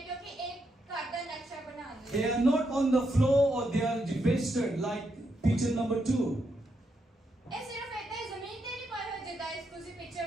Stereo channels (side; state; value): both; normal; correlation 0.81